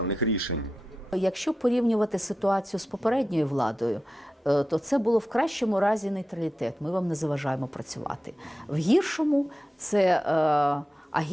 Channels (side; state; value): both; normal; correlation 0.91